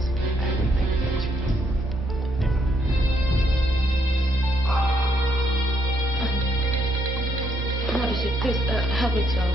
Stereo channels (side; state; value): both; normal; correlation 0.73